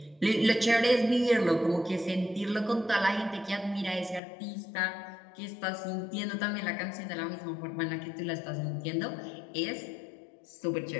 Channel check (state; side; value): drops out; right; at 4.2 s